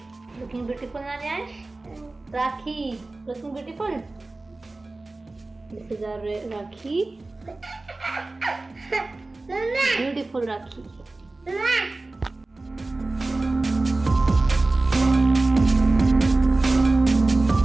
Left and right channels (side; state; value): left; quieter; 3.2 dB